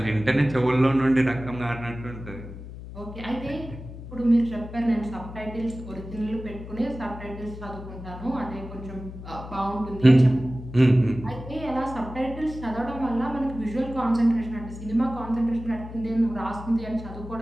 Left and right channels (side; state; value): left; noise; hum, 12 dB below the sound